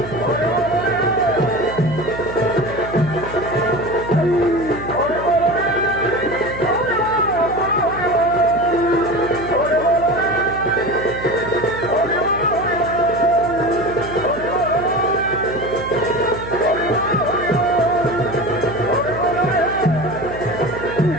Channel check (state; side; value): noise; right; hum, 11 dB below the sound